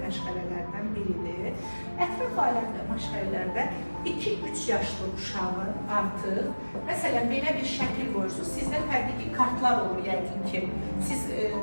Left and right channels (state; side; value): inverted; both; correlation -1.00